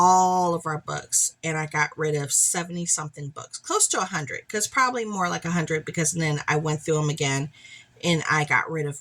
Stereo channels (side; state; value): both; identical; correlation 1.00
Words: of our books, and I got rid of 70 something books, close to 100, because probably more like 100, because then I went through them again and I got rid